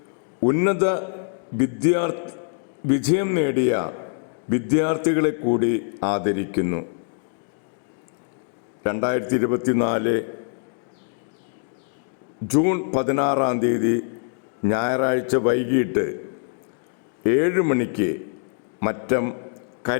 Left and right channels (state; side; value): silent; right; 63 dB below the other